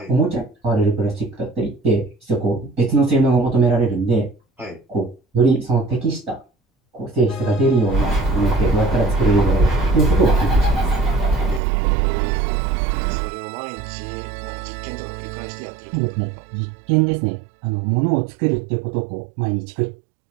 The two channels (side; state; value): left; drops out; at 11.6 s